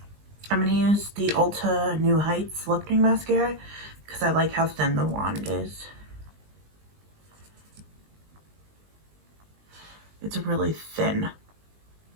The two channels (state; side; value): late; left; 20 ms